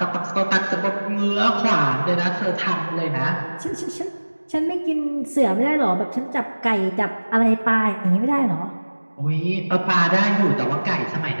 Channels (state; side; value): inverted; both; correlation -1.00